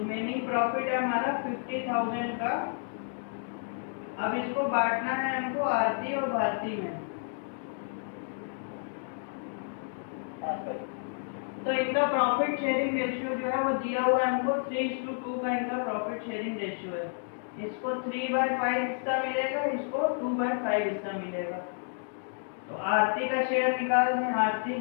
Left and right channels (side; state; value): right; silent; 57 dB below the other